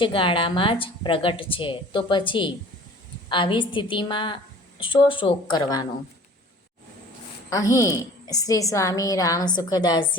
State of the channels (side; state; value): both; normal; correlation 0.47